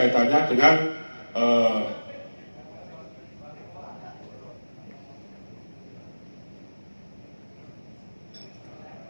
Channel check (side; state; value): both; inverted; correlation -1.00